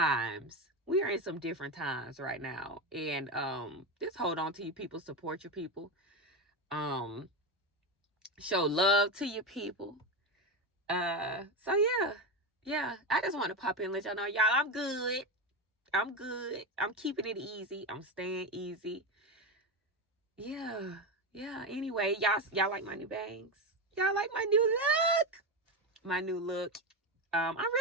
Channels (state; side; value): normal; both; correlation 0.15